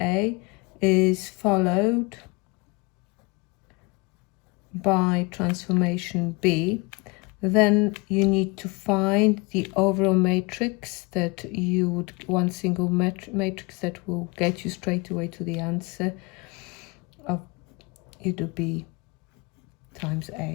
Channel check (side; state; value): right; quieter; 27.8 dB